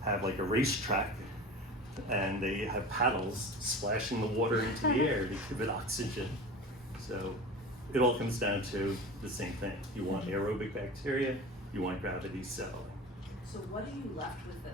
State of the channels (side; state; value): both; normal; correlation 0.33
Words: have like a racetrack, and they have paddles splashing the water into the air to give it oxygen. So it all comes down to the same thing. You want aerobic bacteria, you want gravity settling. So what are you left with